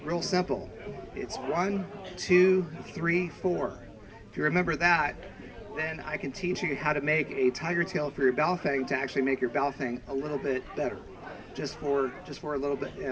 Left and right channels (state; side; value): identical; both; correlation 1.00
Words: real simple. It's 1, 2, 3, 4. If you remember that, then I can teach you how to make a tiger tail for your Baofang to actually make your Baofang a little bit better, just for a little bit.